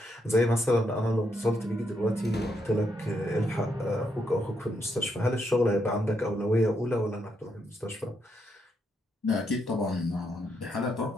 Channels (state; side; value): normal; both; correlation 0.78